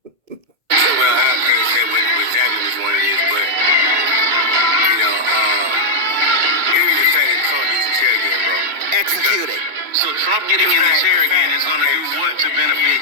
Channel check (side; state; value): left; late; 2.0 ms